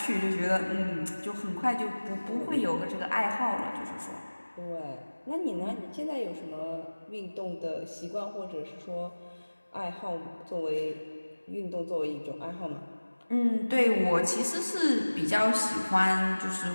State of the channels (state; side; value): inverted; both; correlation -1.00